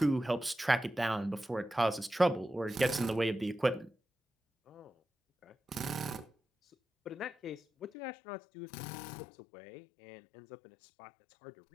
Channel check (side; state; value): right; drops out; at 7.9 s